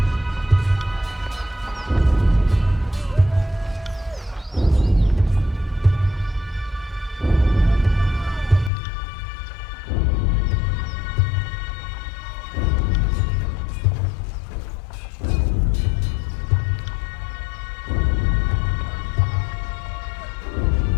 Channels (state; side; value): drops out; right; at 8.7 s